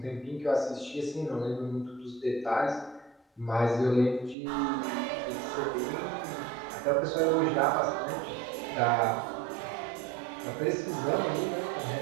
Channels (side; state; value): left; drops out; at 4.4 s